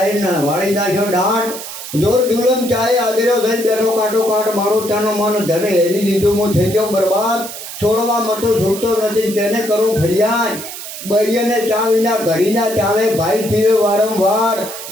વાળી નાખ્યો દાંત જોર દુલમ ચાય આદર્યો થઈ બેઠો કાંટો કાંટ મારો તાનો મન ધને હેરી લીધું હું થઈ ગયો બરબાદ. છોડવા મતો છૂટતો નથી કેને કરું ફરિયાદ. બૈયને ચા વિના ઘડીના ચાલે ભાઈ પીવે વારંવાર.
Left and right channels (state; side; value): noise; right; hiss, 10 dB below the sound